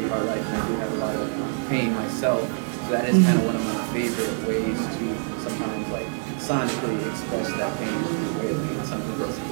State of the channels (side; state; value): left; silent; 59 dB below the other